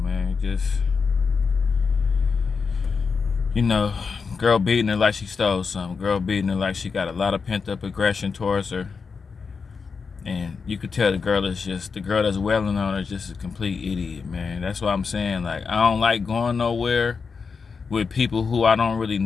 Just, girl beating her like she stole something. Girl beating her like she got a lot of pent-up aggression towards her. And you could tell the girl that's wailing on her is just a complete idiot, man. That's what I'm saying. Like, I don't like going nowhere with people who I don't really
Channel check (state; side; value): quieter; right; 5.3 dB